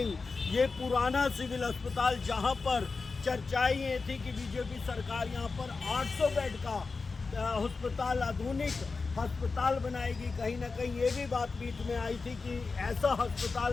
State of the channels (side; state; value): right; quieter; 4.3 dB